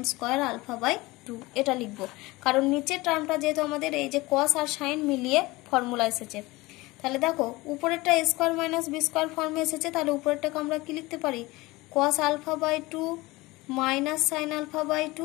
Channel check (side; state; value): right; quieter; 21.1 dB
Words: square alpha by 2, এটা লিখবো। কারণ নিচের টার্মটা যেহেতু আমাদের এই যে cos আর sin মিলিয়ে ফর্মুলা এসেছে, তাহলে দেখো উপরেরটা a square minus b square ফর্মে এসেছে, তাহলে উপরেরটাকে আমরা কি লিখতে পারি cos alpha by 2 minus sin alpha by